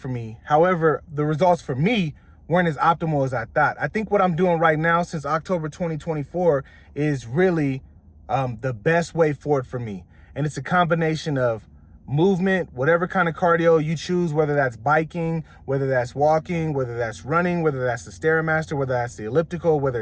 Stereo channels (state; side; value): identical; both; correlation 1.00